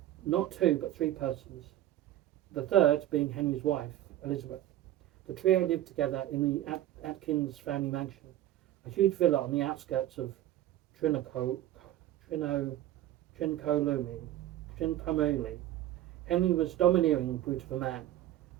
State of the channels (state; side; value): quieter; left; 13.3 dB